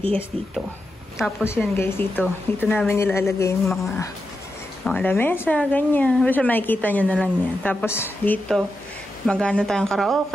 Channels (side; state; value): both; normal; correlation 0.88